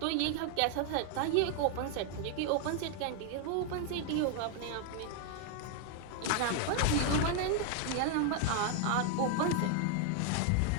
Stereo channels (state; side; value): different; both; correlation 0.00